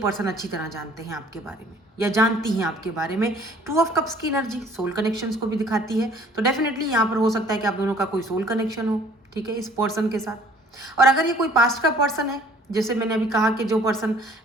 अच्छी तरह जानते हैं आपके बारे में, या जानती हैं आपके बारे में। 2 ऑफ कप्स की एनर्जी सोल कनेक्शंस को भी दिखाती है, तो डेफिनेटली यहाँ पर हो सकता है कि आप दोनों का कोई सोल कनेक्शन हो, ठीक है, इस पर्सन के साथ। और अगर ये कोई पास्ट का पर्सन है, जैसे मैंने अभी कहा कि जो पर्सन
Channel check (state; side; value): normal; both; correlation 0.55